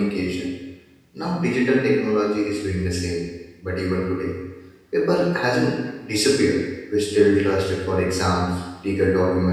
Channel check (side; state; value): both; identical; correlation 1.00